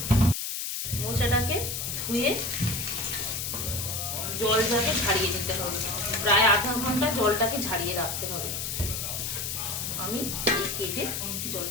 মোচাটাকে ধুয়ে জলটাকে ঝাড়িয়ে নিতে হবে, প্রায় আধা ঘন্টা জলটাকে ঝাড়িয়ে রাখতে হবে। আমি এই কেটে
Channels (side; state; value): left; noise; hiss, 3 dB below the sound